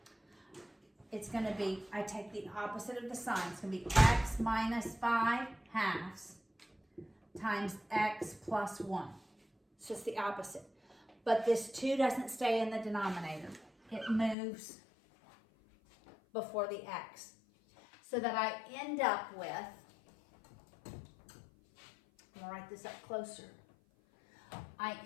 It's going to be, I take the opposite of the sign. It's going to be x minus 5/2 times x plus 1. It's just the opposite. But this 2 doesn't stay in the denominator. It moves before the x. So that I end up with going to write this up closer. I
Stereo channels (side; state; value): right; drops out; at 14.4 s